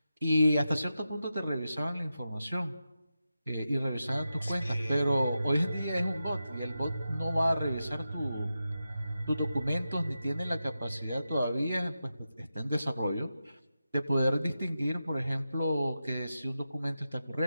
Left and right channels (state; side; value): inverted; both; correlation -0.90